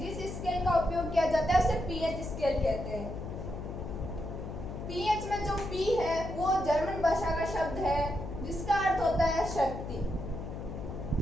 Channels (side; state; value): left; noise; hum, 7 dB below the sound